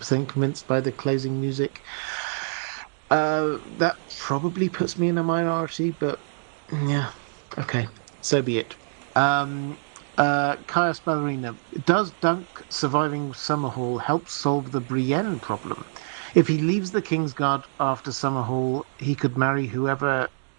convinced by the closing music. That probably puts me in a minority, but yeah, okay, so be it. Caius Ballerina, does Dunk surviving Summerhall help solve the Brienne problem? If he leaves the Kingsguard after Summerhall, he could marry whoever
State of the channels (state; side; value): silent; left; digital silence